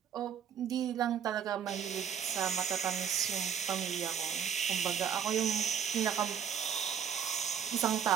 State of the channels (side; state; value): left; quieter; 8.1 dB